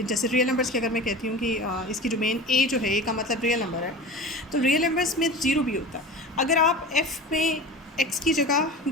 जैसे रियल नंबर्स की अगर मैं कहती हूँ कि इसकी डोमेन ए जो है, ए का मतलब रियल नंबर है, तो रियल नंबर्स में ज़ीरो भी होता है। अगर आप एफ़ में एक्स की जगह,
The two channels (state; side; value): normal; both; correlation 0.33